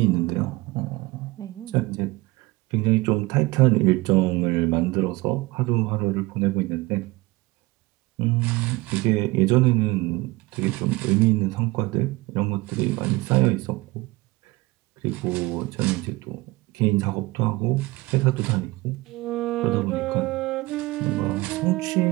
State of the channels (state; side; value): quieter; left; 21.6 dB